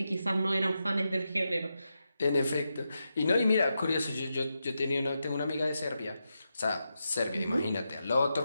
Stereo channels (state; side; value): inverted; both; correlation -0.87